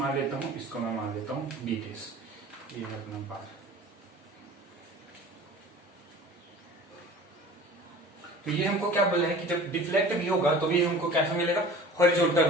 लेता हूँ, इसको मैं मान लेता हूँ बी डेस। ये है अपना बार। तो ये हमको क्या बोला है कि जब डिफ्लेक्ट भी होगा तो ये हमको कैसा मिलेगा? हॉरिजॉन्टल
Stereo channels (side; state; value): both; normal; correlation 0.42